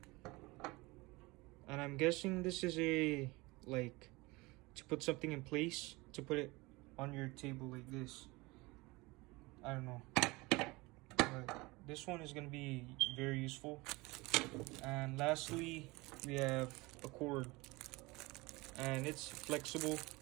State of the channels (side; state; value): left; quieter; 23.2 dB